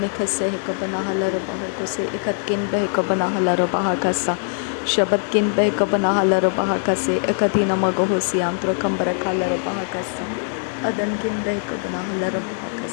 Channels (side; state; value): right; silent; digital silence